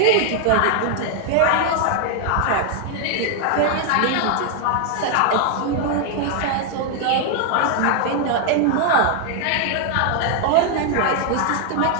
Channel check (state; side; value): different; both; correlation 0.00